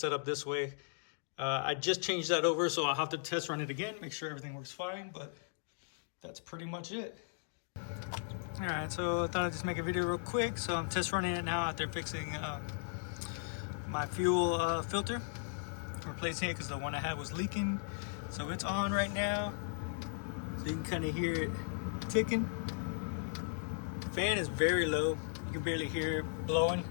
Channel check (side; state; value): right; silent; digital silence